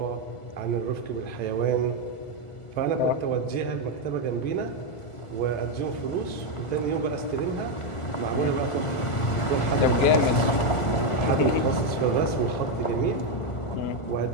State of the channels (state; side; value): late; right; 1.5 ms